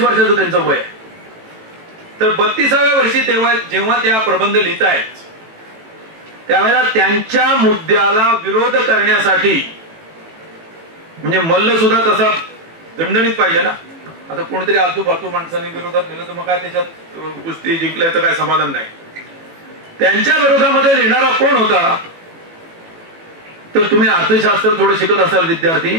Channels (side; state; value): left; late; 18 ms